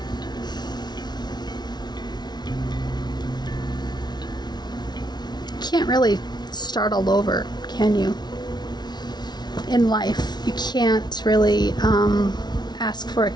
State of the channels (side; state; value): right; late; 0.20 ms